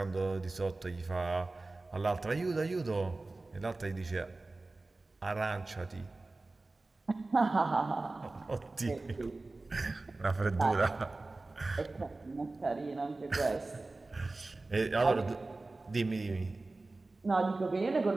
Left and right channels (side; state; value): left; quieter; 3.3 dB